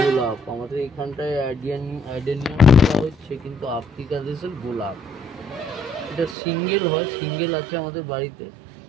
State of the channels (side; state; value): left; drops out; at 6.4 s